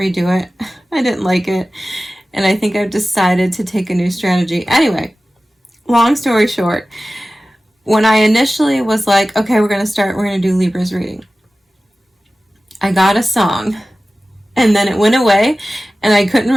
redo it. I didn't like it, and I think I've decided to take a new strategy. Anyway, long story short, when I initially was like, okay, we're going to do Libra's reading, I got a song, and then it went away, and I couldn't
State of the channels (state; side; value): normal; both; correlation 0.96